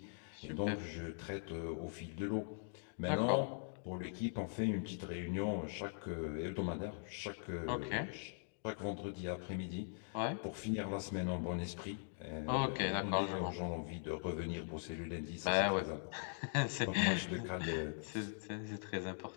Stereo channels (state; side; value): silent; right; digital silence